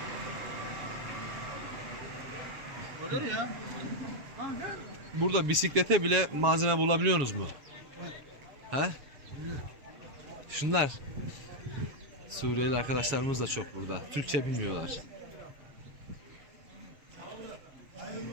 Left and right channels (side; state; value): left; late; 7.3 ms